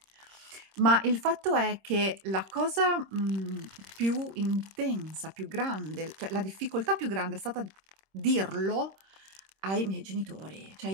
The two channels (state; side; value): late; left; 26 ms